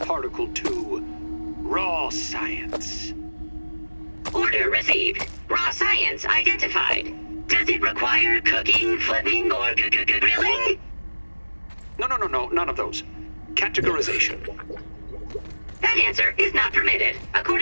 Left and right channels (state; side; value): inverted; both; correlation -1.00